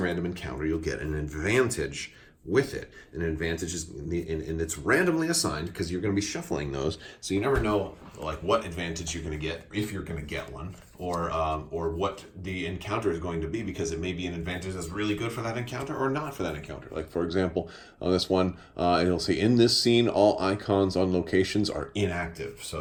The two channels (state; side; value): identical; both; correlation 1.00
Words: random encounter, you'll get an advantage with it. An advantage is, and it's randomly assigned because you're going to be shuffling those, so you never know like what advantage you're going to get, if you're going to get one, or what the encounter is going to be, because it may be an advantage that's really good for that encounter or not for that encounter. Like for example, on this one, it'll say in this scene all icons on locations are inactive, so